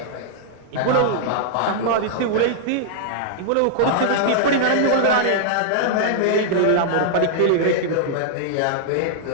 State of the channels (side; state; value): both; different; correlation -0.01